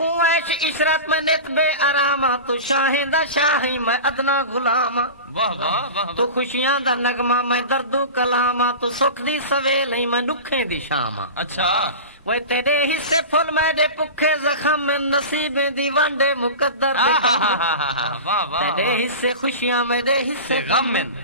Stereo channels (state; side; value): inverted; both; correlation -0.30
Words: عیش عشرت میں نت بے آراما تو شاہیں دا شاہی میں ادنا غلاما. واہ واہ واہ. تو خوشیاں دا نغمہ میں دردو کلاما تو سکھ دی سویلے میں دکھیں دی شاما. اچھا وہ تیرے حصے پھل میرے پکھے زخم میں نصیبیں دی ونڈے مقدر دے کم. واہ واہ. تیرے حصے خوشیاں میرے حصے غم.